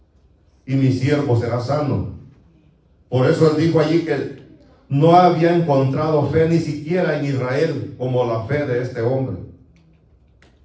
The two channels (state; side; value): identical; both; correlation 1.00